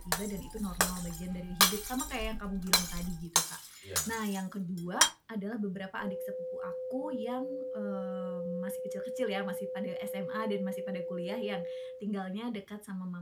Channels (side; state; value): both; identical; correlation 1.00